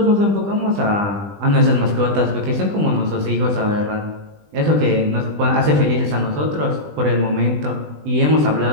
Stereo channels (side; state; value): left; late; 20 ms